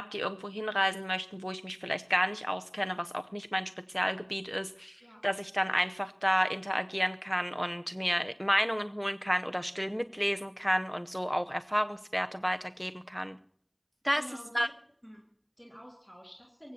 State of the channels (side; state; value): both; identical; correlation 1.00